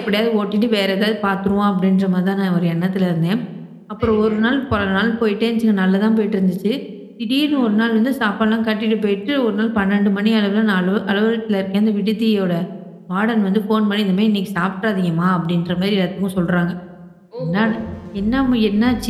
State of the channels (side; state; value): both; identical; correlation 1.00